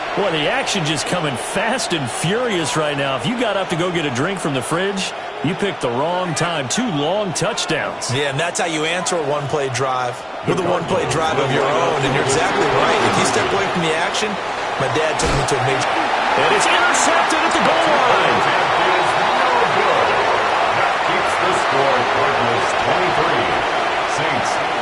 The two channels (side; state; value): both; identical; correlation 1.00